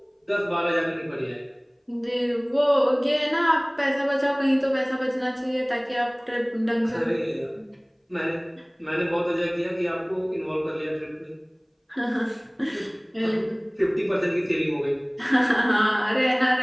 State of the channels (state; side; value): identical; both; correlation 1.00